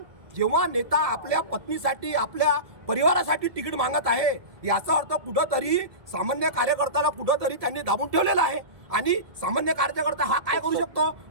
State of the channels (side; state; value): left; late; 1.7 ms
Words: जेव्हा नेता आपल्या पत्नीसाठी आपल्या परिवारासाठी तिकीट मागत आहे, याचा अर्थ कुठंतरी सामान्य कार्यकर्त्याला कुठंतरी त्यांनी दाबून ठेवलेला आहे. आणि सामान्य कार्यकर्ता हा काय करू शकतो?